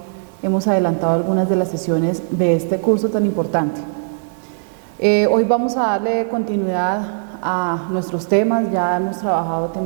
hemos adelantado algunas de las sesiones de este curso tan importante. Hoy vamos a darle continuidad a nuestros temas. Ya hemos trabajado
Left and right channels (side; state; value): left; silent; 63 dB below the other